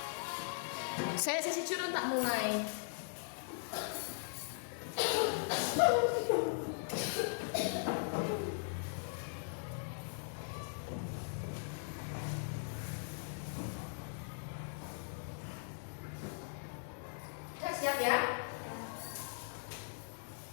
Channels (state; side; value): silent; right; 51 dB below the other